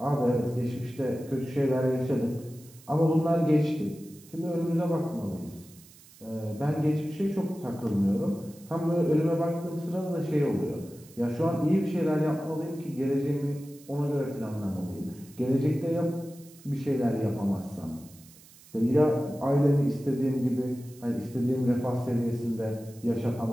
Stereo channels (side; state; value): right; noise; hiss, 23 dB below the sound